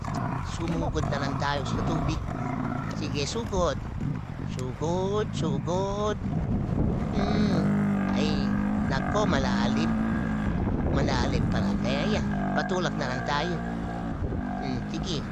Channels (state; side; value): identical; both; correlation 1.00